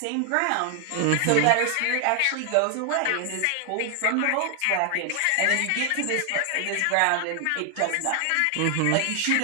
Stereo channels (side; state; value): both; different; correlation 0.00